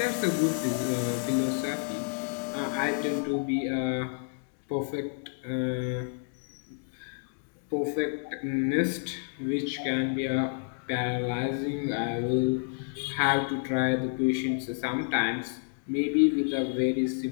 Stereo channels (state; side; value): silent; right; digital silence